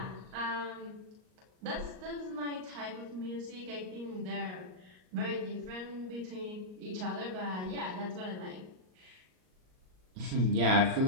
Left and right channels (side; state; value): left; late; 38 ms